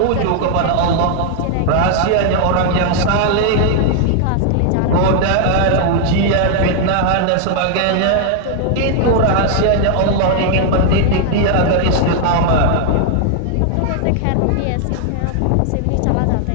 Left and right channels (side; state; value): both; different; correlation 0.00